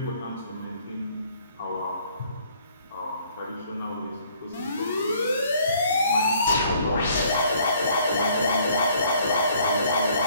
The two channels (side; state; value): both; inverted; correlation -0.61